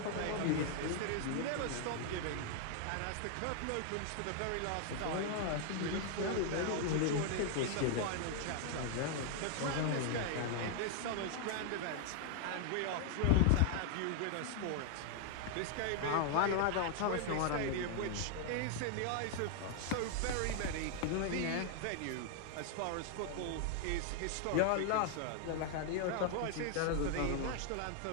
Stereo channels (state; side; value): different; both; correlation 0.00